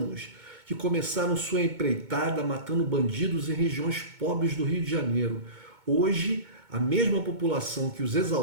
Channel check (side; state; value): left; late; 2.2 ms